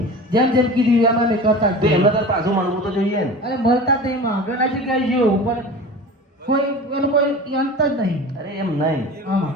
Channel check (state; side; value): normal; both; correlation 0.35